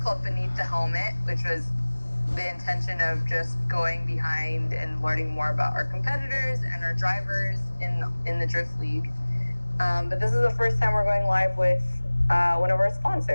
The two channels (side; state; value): both; inverted; correlation -1.00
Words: Beneath the Helmet, which was the intention of just going behind and learning more about our competitors and our drivers in the Drift League. But this is the first time we're going live with one of our